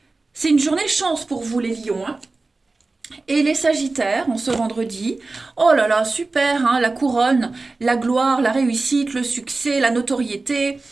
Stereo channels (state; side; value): quieter; left; 3.5 dB